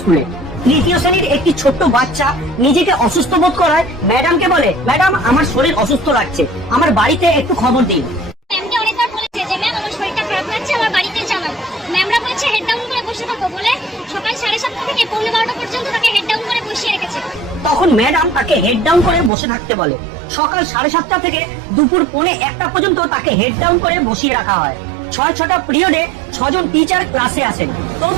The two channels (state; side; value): drops out; left; at 19.3 s